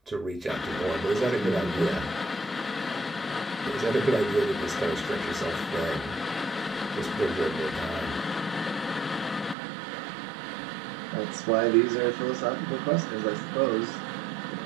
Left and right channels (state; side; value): drops out; left; at 9.6 s